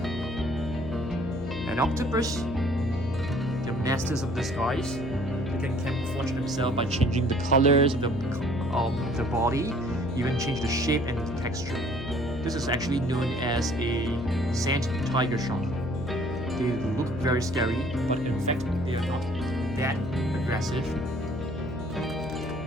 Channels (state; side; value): noise; left; hum, 8 dB below the sound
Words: An octopus. They're masters of disguise. They can camouflage themselves by changing the colors of the body, even change the shape and the texture. This is actually known as a sand tiger shark. They look very scary, but in fact they are not that aggressive.